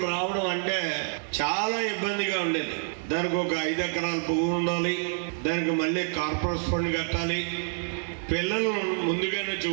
రావడం అంటే చాలా ఇబ్బందిగా ఉండేది. దానికి ఒక 5 ఎకరాల పువ్వు ఉండాలి, దానికి మళ్ళీ కార్పొరేట్ ఫండ్ కట్టాలి, పిల్లలు ముందుగానే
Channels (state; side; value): silent; left; 60 dB below the other